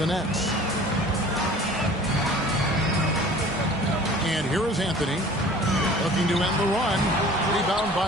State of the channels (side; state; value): both; normal; correlation 0.46